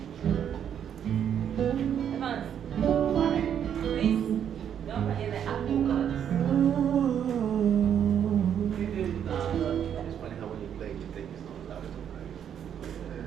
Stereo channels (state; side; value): quieter; left; 9.0 dB